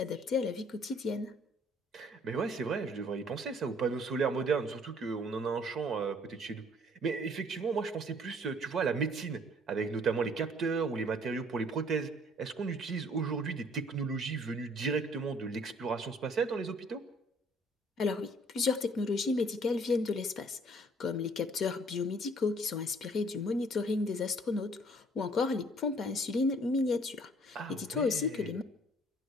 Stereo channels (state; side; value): normal; both; correlation 0.58